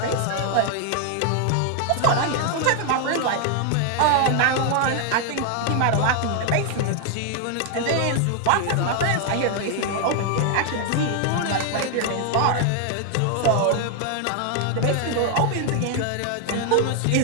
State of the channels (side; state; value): both; different; correlation 0.00